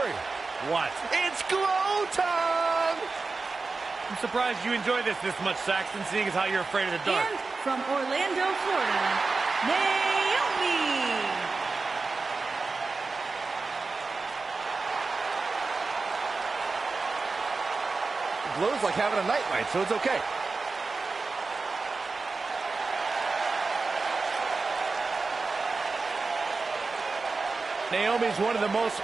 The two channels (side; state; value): left; quieter; 4.0 dB